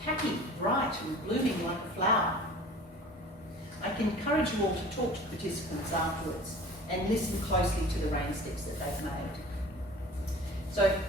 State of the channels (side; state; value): both; normal; correlation 0.43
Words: happy, bright and blooming like a flower. I can encourage you all to talk to participants afterwards and listen closely to the rain sticks that they've made. So